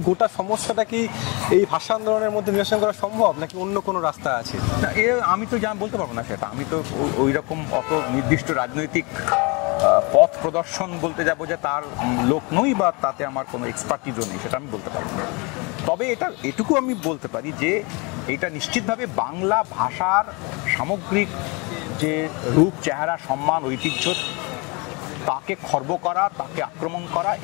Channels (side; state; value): right; quieter; 29.2 dB